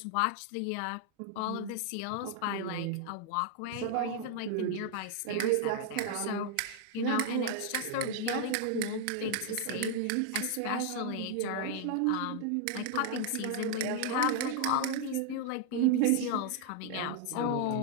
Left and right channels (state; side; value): different; both; correlation 0.00